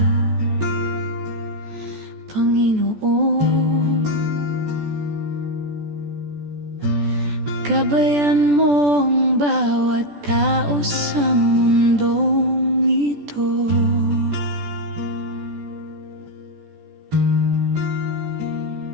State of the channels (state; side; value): late; left; 14 ms